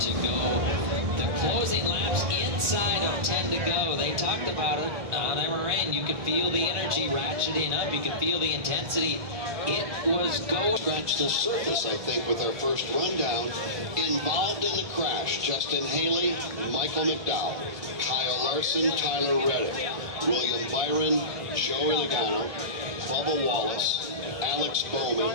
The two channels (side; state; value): left; late; 1.7 ms